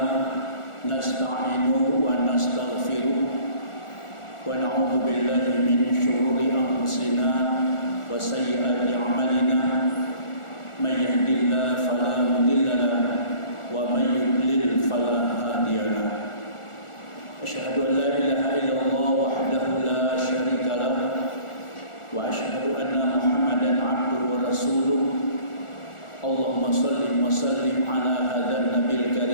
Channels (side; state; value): right; late; 1.4 ms